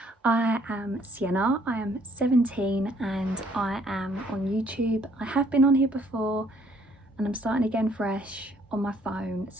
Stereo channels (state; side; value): normal; both; correlation 0.64